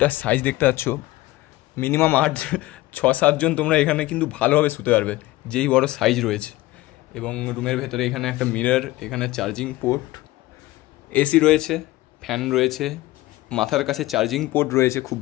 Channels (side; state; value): right; quieter; 18.2 dB